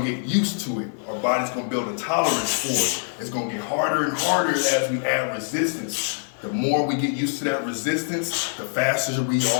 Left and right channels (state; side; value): silent; right; digital silence